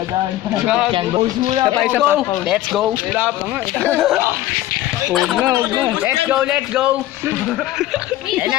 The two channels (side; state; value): right; quieter; 14.7 dB